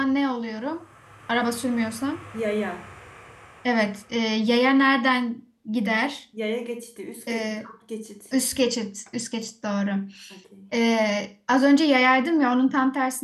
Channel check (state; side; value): identical; both; correlation 1.00